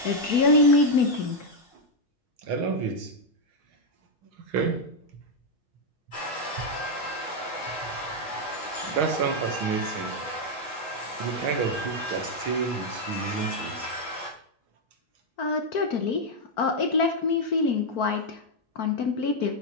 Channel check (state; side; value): normal; both; correlation 0.00